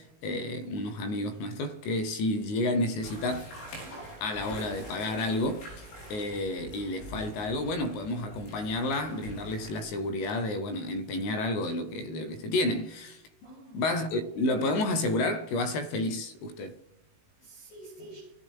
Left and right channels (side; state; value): right; late; 19 ms